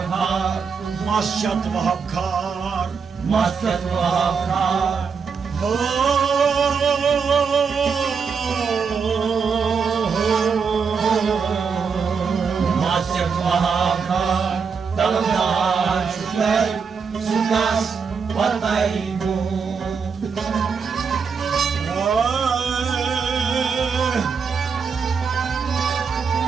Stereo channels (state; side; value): quieter; left; 5.8 dB